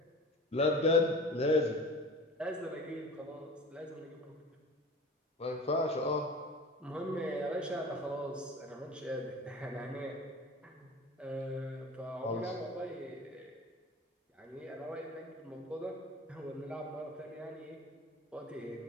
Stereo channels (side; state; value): both; normal; correlation 0.38